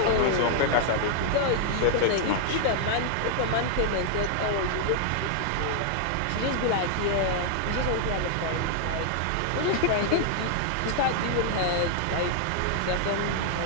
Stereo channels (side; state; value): both; different; correlation 0.00